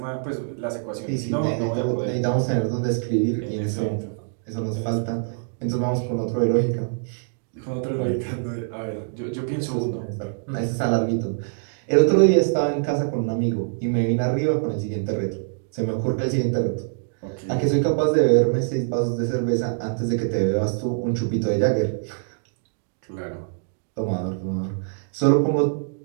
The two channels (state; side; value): silent; left; digital silence